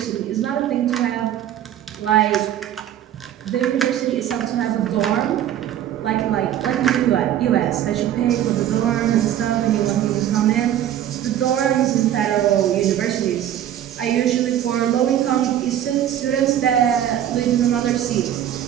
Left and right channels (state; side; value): quieter; left; 11.2 dB